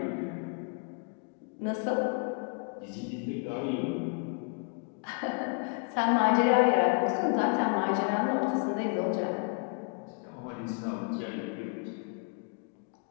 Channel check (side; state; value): right; quieter; 38.7 dB